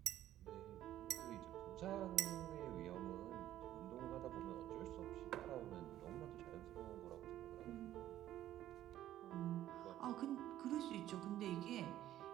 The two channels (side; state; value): left; quieter; 12.9 dB